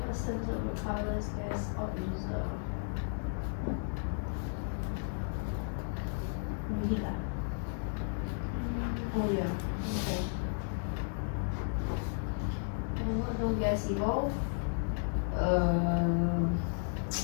of the colors gas or user. Oh yeah. Okay. And what no gas evolve?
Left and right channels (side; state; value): right; silent; digital silence